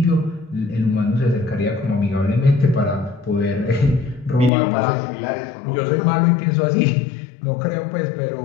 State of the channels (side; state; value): right; drops out; at 4.5 s